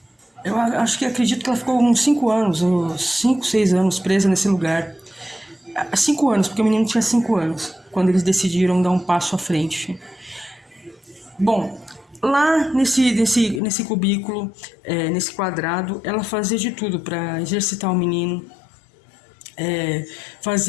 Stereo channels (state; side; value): drops out; right; at 13.6 s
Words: eu acredito que ela ficou uns 5 anos, uns 5, 6 anos presa nesse lugar. 5 anos, porque o menino tinha 5 anos, quando eles decidiram dar um passo à frente. Bom, lá nesse cubículo, nesse quadrado, ela fazia de tudo para exercitar o menino.